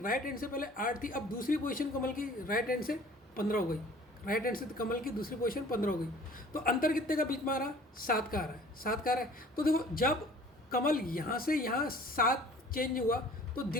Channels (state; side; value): normal; both; correlation 0.50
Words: हैंड से पहले 8 थी, अब दूसरी पोजीशन कमल की राइट हैंड से 15 हो गई, राइट हैंड से कमल की दूसरी पोजीशन 15 हो गई। तो अंतर कितने का बीच में आ रहा, 7 का आ रहा है, 7 का आ रहा है। तो देखो जब कमल यहाँ से यहाँ 7 चेंज हुआ, तो